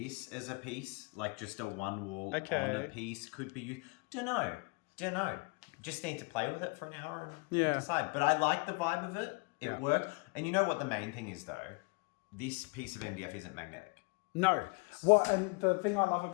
as a piece, like just a 1 wall on a piece, could be used. Don't know. Just need to play with it for an hour and decide. But I like the vibe of it. It worked. And you know what the main thing is, though? This piece of MDF isn't magnetic. No. What? And the thing I love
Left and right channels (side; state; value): right; quieter; 30.3 dB